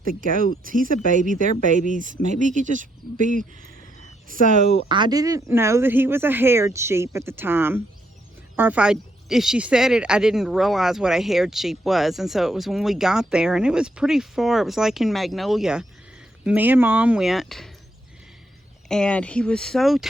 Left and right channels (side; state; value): both; normal; correlation 0.76